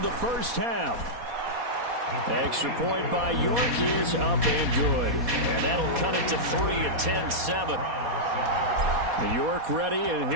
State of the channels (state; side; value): late; left; 4.2 ms